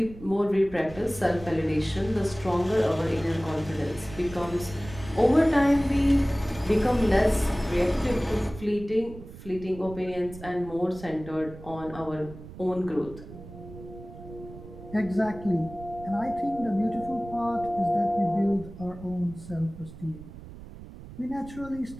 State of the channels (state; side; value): noise; right; rumble, 15 dB below the sound